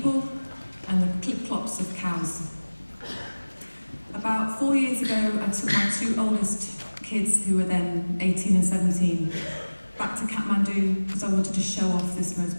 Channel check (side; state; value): both; inverted; correlation -1.00